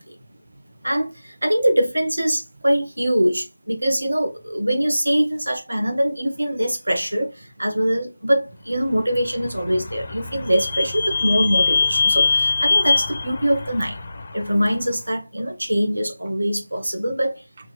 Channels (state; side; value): inverted; both; correlation -0.95